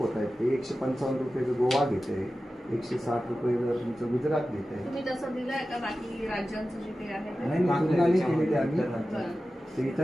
होत आहेत ते 155 रुपये गोवा घेत आहे 160 रुपये जर तुमचं गुजरात घेत आहे. तुम्ही तसं दिलंय का बाकी राज्यांचं जे काही आहे नाही तुलनाने केलेले आम्ही ते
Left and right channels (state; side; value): normal; both; correlation 0.94